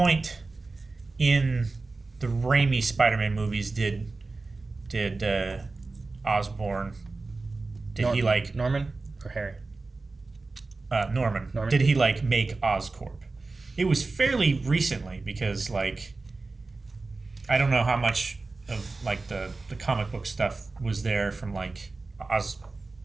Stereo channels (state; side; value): quieter; left; 3.6 dB